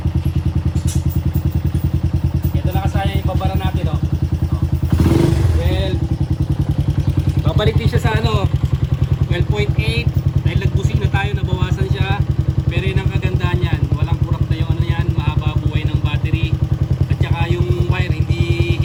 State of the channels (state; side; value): identical; both; correlation 1.00